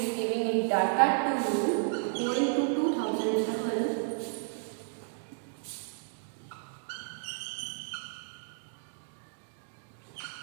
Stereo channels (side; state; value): left; silent; digital silence